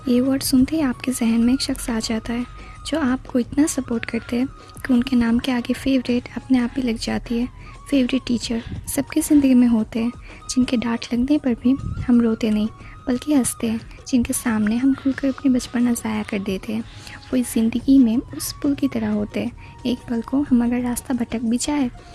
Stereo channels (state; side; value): identical; both; correlation 1.00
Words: ये word सुनते ही आपके जहन में एक शख्स आ जाता है जो आपको इतना सपोर्ट करते हैं कि उनके नाम के आगे फेवरेट अपने आप ही लग जाती है। फेवरेट टीचर सबकी ज़िंदगी में होते हैं, जिनके डांट लगने पर भी हम रोते नहीं बल्कि हंसते हैं, जिनके सामने हम खुलकर अपनी बचपना ज़ाया कर देते हैं। वो इस ज़िंदगी में उस पुल की तरह होते हैं। एक पल को हम अगर रास्ता भटक भी जाए